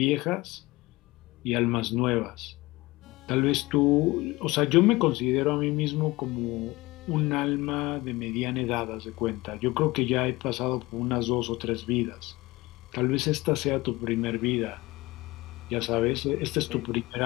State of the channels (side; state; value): right; quieter; 20.9 dB